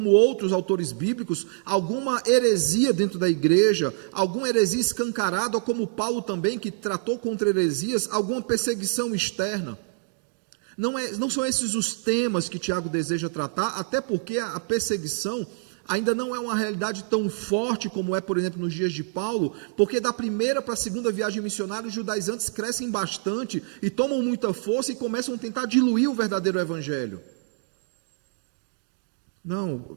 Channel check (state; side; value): silent; left; digital silence